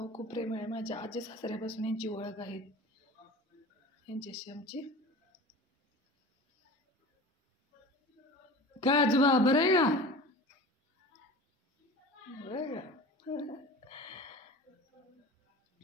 खूप प्रेमळ आहे. माझ्या आजी सासऱ्यापासून यांची ओळख आहे. यांच्याशी आमची काय आजोबा बरं आहे का? बरं का?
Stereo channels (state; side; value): normal; both; correlation 0.37